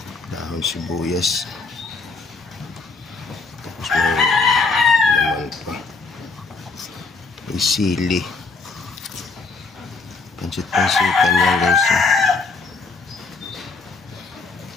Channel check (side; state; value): right; quieter; 4.1 dB